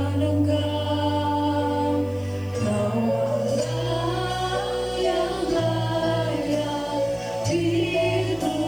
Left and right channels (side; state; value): right; noise; hiss, 28 dB below the sound